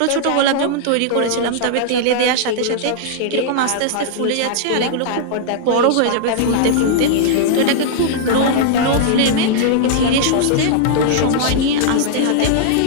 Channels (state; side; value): different; both; correlation -0.01